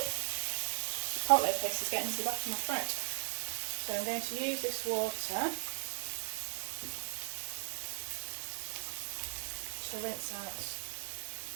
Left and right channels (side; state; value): left; silent; 53 dB below the other